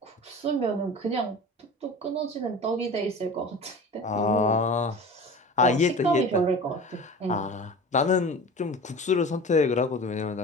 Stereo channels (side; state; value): both; normal; correlation 0.36